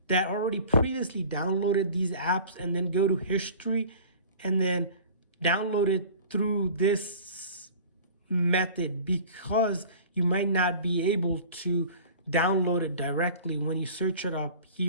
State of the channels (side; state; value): both; inverted; correlation -0.43